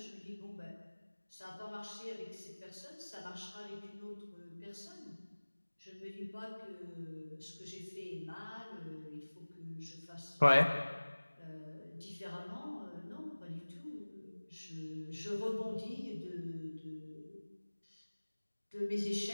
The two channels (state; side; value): inverted; both; correlation -1.00